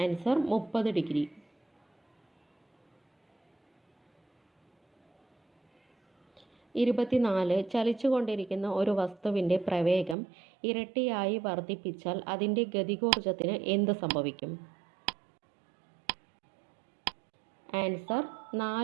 30 degree. 24. 24 ചലിച്ചുകൊണ്ടിരിക്കുന്ന ഒരു വസ്തുവിൻ്റെ പ്രവേഗം ഇരട്ടിയായി വർദ്ധിപ്പിച്ചാൽ അതിൻ്റെ ഗതികോർജത്തിന് എന്ത് സംഭവിക്കും? ആൻസർ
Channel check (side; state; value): left; drops out; at 10.2 s